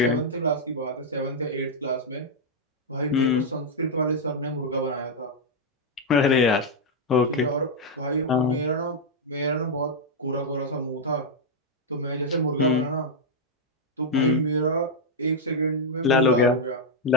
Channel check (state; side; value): normal; both; correlation -0.02